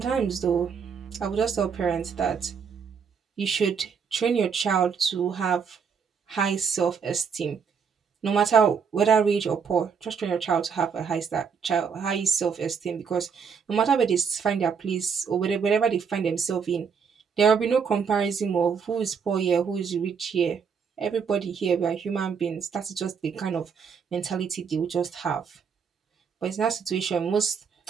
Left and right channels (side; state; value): left; quieter; 6.3 dB